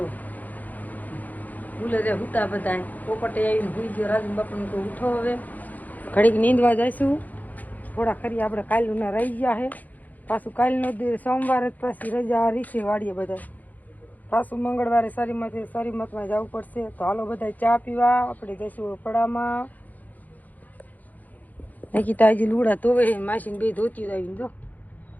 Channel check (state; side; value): late; right; 0.081 ms